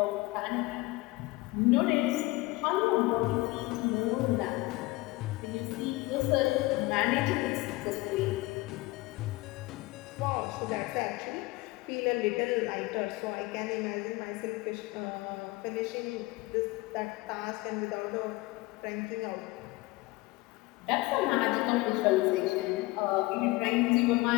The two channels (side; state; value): right; quieter; 21.4 dB